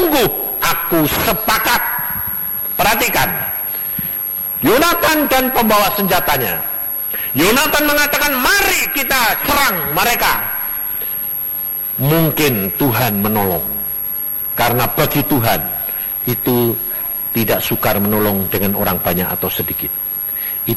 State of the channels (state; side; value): identical; both; correlation 1.00